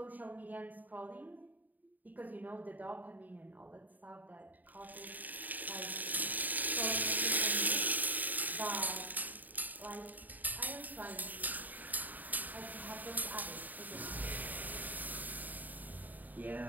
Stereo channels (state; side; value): late; left; 0.084 ms